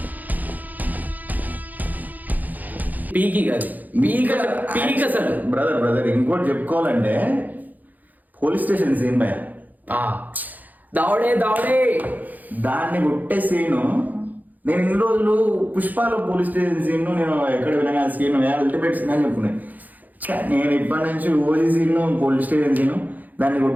పీకి కాదు, పీక్ అసలు. బ్రదర్ ఇంకోటి చెప్పుకోవాలంటే పోలీస్ స్టేషన్ సీన్ భయ దావడే దాన్ని కొట్టే సీను. నేను ఇన్ని రోజులు పుష్పాలో పోలీస్ స్టేషన్ సీన్ నేను ఎక్కడ వినగా సీన్ అల్టిమేట్ సీన్ అని చెప్పుకున్నాను. నేను ఇప్పటి నుంచి OG scene police station scene దాన్ని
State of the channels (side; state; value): left; late; 0.082 ms